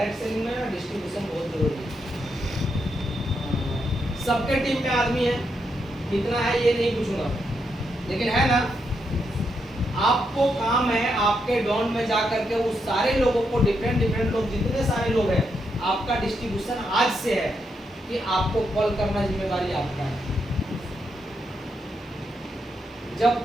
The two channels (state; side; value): normal; both; correlation 0.81